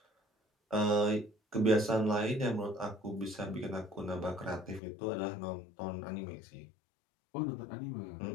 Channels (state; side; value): drops out; right; at 4.8 s